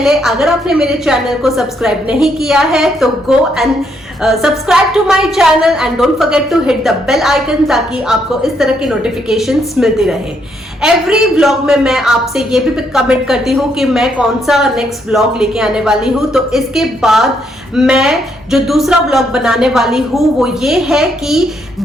अगर आपने मेरे चैनल को सब्सक्राइब नहीं किया है तो go and subscribe to my channel and don't forget to hit the bell icon, ताकि आपको इस तरह की नोटिफिकेशंस मिलती रहे। एवरी व्लॉग में मैं आपसे ये भी कमेंट करती हूँ कि मैं कौन सा नेक्स्ट व्लॉग लेके आने वाली हूँ। तो इसके बाद मैं जो दूसरा व्लॉग बनाने वाली हूँ वो ये है कि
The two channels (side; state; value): both; normal; correlation 0.74